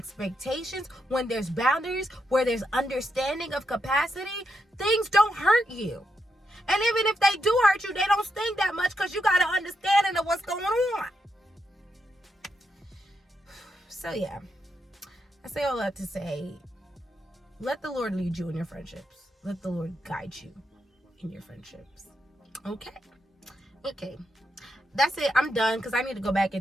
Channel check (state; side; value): normal; both; correlation 0.82